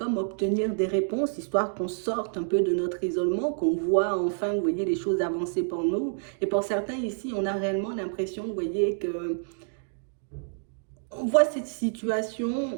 obtenir des réponses, histoire qu'on sorte un peu de notre isolement, qu'on voit enfin, vous voyez, les choses avancer pour nous. Et pour certains ici, on a réellement l'impression, vous voyez, que on voit cette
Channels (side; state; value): left; silent; digital silence